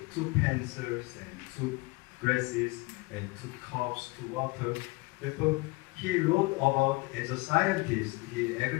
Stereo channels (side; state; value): right; quieter; 25.0 dB